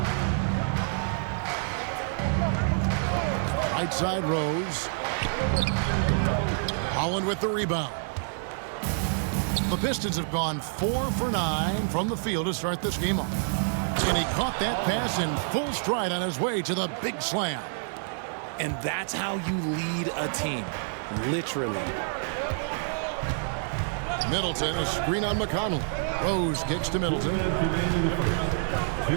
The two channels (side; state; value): left; silent; digital silence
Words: Right side Rose. Holland with the rebound. The Pistons have gone 4 for 9 from the field to start this game off. And he caught that pass in full stride on his way to the big slam. And that's how you lead a team. Literally. Middleton, a screen on McConnell. Rose kicks to Middleton.